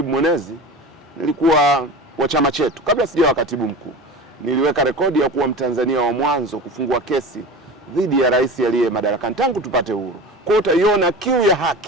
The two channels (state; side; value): normal; both; correlation 0.32